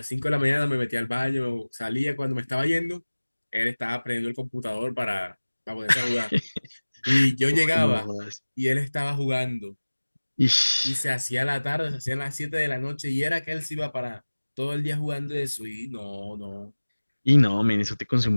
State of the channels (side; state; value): both; inverted; correlation -1.00